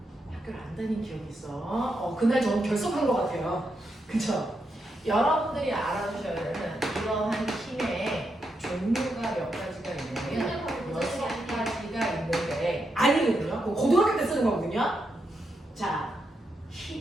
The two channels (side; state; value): both; normal; correlation 0.83